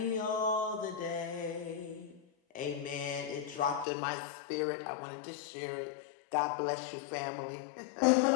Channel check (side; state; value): right; drops out; at 3.9 s